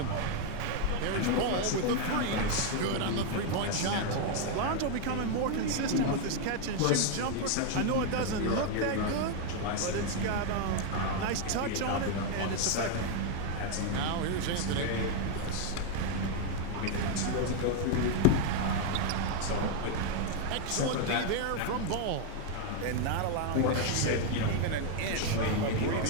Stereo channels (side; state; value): both; different; correlation 0.01